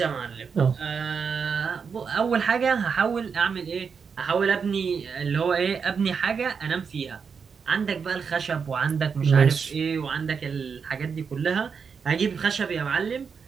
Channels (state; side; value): quieter; left; 6.0 dB